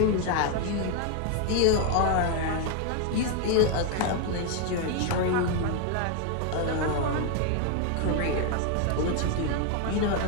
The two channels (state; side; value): different; both; correlation 0.01